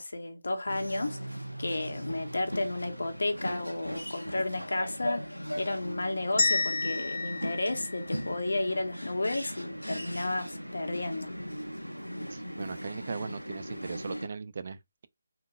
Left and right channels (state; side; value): inverted; both; correlation -0.96